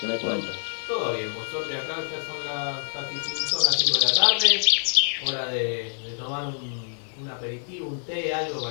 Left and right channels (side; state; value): right; silent; digital silence